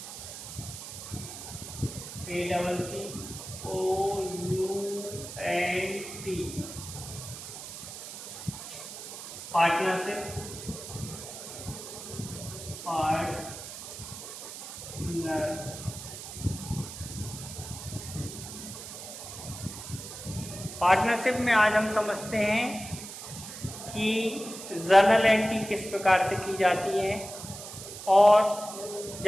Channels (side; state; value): right; noise; hiss, 11 dB below the sound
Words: ACCOUNT पार्टनरशिप में आज हम समझते हैं कि जर्नल एंट्री किस प्रकार से की जाती है और